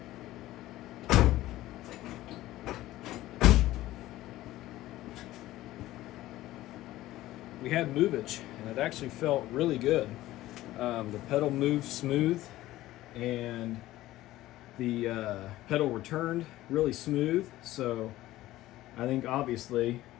We had movage, and it actually felt really good. The pedal moved smooth, and the pedal returned really smooth. So I think obviously,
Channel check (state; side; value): quieter; right; 15.9 dB